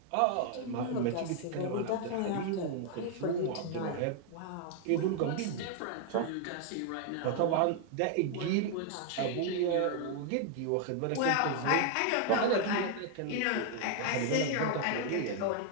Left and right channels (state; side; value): different; both; correlation 0.00